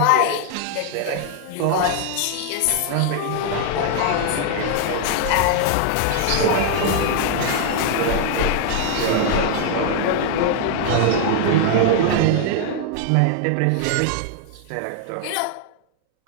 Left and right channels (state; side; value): different; both; correlation 0.00